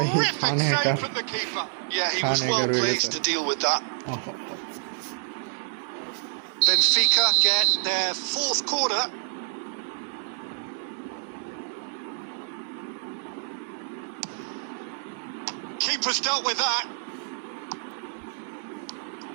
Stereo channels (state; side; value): silent; left; 60 dB below the other